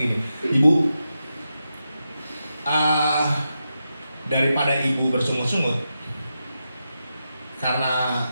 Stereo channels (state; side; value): inverted; both; correlation -0.88